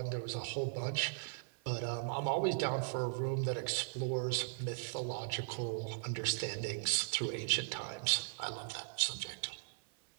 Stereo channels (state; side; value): silent; left; 52 dB below the other